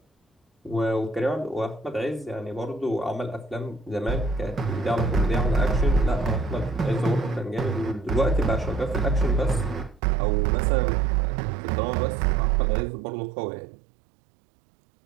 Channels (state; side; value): drops out; left; at 10.0 s